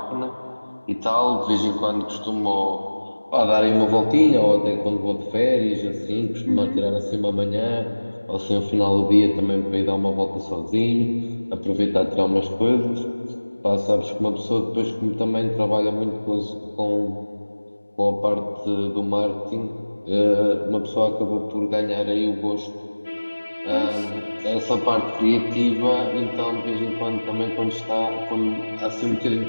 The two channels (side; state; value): both; inverted; correlation -1.00